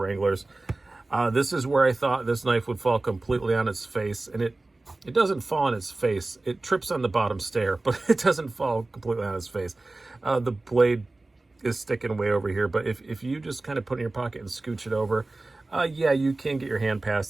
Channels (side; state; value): left; quieter; 3.1 dB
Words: This is where I thought this knife would fall completely on its face, and it doesn't fall on its face. It trips on the bottom stair, but it doesn't fall completely on its face. The blade is sticking way over here, but if you just kind of put it in your pocket and scooch it over, yeah, you can get your hand